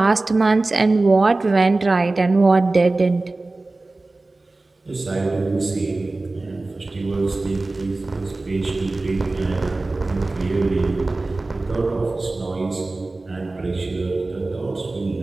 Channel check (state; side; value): quieter; left; 3.2 dB